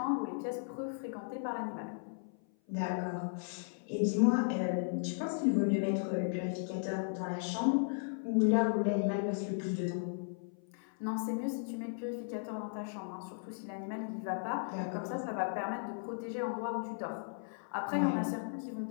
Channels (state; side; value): silent; right; 54 dB below the other